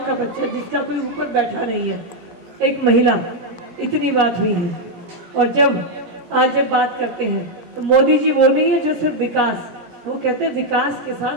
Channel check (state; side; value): late; left; 17 ms